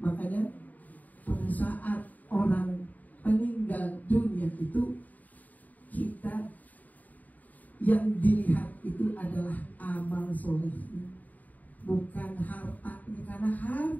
Makanya pada saat orang meninggal dunia itu, kita yang dilihat itu adalah amal solehnya, bukan hartanya, karena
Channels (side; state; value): right; late; 0.078 ms